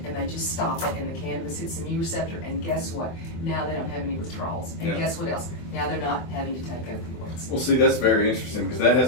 and they just stop it and the cannabis hits the mu receptor, and guess what? Now they don't have any withdrawals. And guess what else? Now they're not having to take opioids. Well, see, that's very interesting because that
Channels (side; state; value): right; late; 24 ms